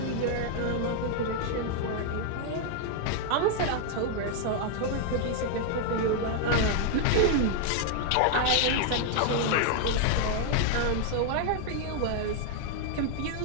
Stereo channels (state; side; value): different; both; correlation 0.00